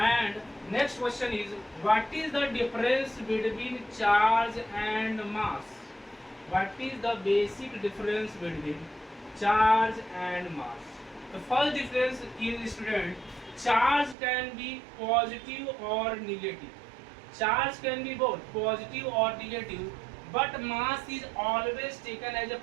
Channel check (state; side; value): drops out; left; at 14.2 s